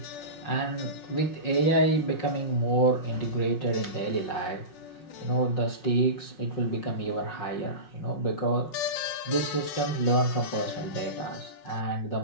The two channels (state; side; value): late; right; 5.5 ms